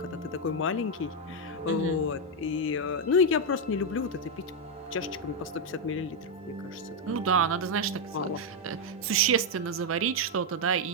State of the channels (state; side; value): normal; both; correlation 0.01